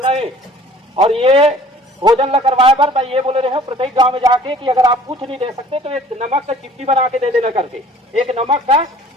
है। और ये भोजन ला करवाए पर मैं ये बोले रहे हूँ प्रत्येक गांव में जाके कि अगर आप कुछ नहीं दे सकते तो एक नमक का चिट्ठी बना के दे देना करके, एक नमक का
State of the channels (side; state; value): both; normal; correlation 0.51